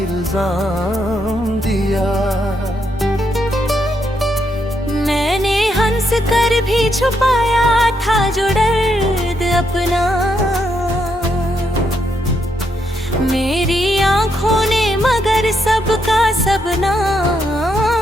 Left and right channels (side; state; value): both; normal; correlation 0.78